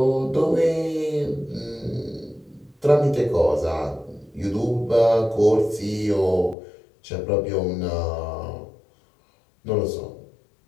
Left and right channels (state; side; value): drops out; right; at 6.6 s